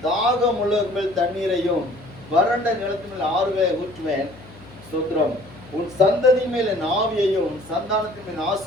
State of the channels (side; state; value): left; noise; hum, 21 dB below the sound